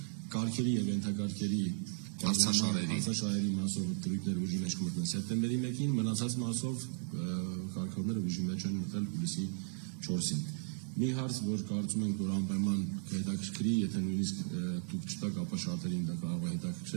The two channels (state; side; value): silent; left; digital silence